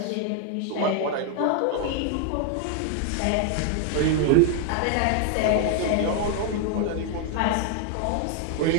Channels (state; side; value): different; both; correlation 0.00